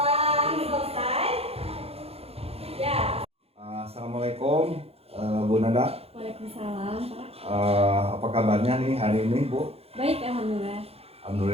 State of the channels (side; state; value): left; late; 0.29 ms